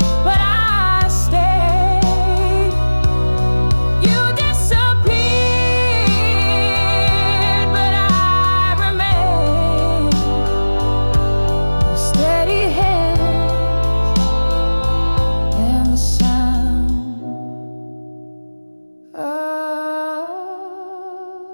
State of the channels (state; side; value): inverted; both; correlation -1.00